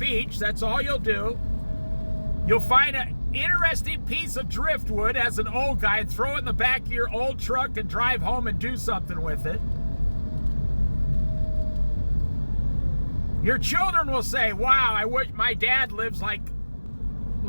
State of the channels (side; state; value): both; inverted; correlation -1.00